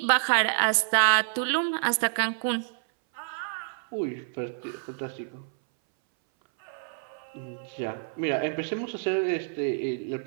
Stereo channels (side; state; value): left; silent; 59 dB below the other